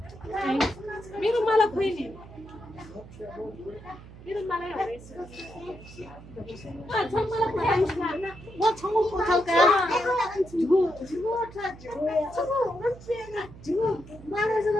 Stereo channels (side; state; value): right; noise; hum, 18 dB below the sound